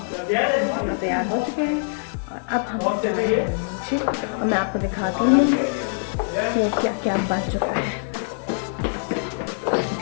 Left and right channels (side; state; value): right; silent; 63 dB below the other